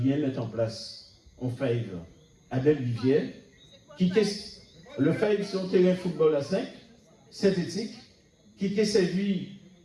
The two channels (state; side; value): identical; both; correlation 1.00